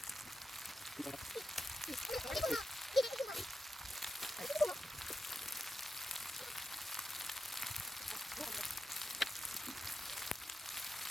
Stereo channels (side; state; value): both; normal; correlation 0.89